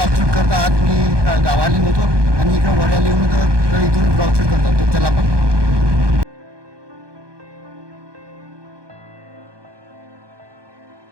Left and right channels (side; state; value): left; late; 1.2 ms